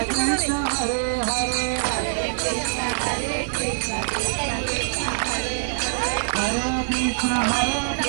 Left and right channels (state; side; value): silent; left; 56 dB below the other